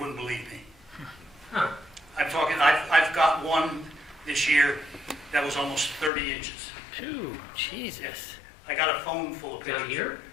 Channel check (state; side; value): drops out; right; at 6.1 s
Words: believe me. Huh. I've got one this year that was almost 30 inches. Phew, Jesus. I got a phone full of Down pictures. here?